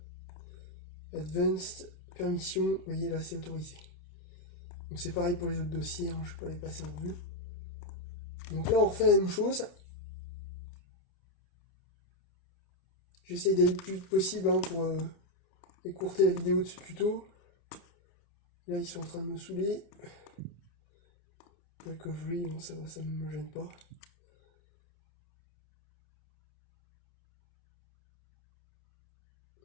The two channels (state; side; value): late; right; 29 ms